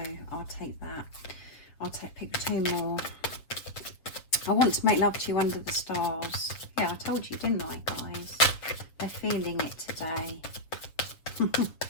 I'll take that. Pick two more. I want to make love to you under the stars. Yeah, I told you, didn't I, guys? They're feeling it today.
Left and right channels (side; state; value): right; late; 7.1 ms